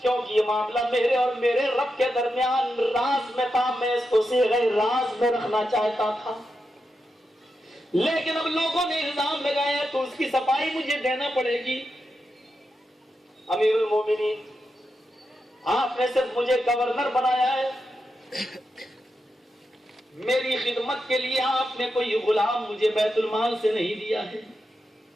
کیونکہ یہ معاملہ میرے اور میرے رب کے درمیان راز میں تھا. میں اس کو صیغہ راز میں رکھنا چاہتا تھا، لیکن اب لوگوں نے الزام لگایا تو اس کی صفائی مجھے دینا پڑے گی. امیر المومنین، آپ نے صرف مجھے گورنر بنایا ہے، میری خدمت کے لیے آپ نے کوئی غلام مجھے بیت المال سے نہیں دیا ہے.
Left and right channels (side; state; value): both; normal; correlation 0.87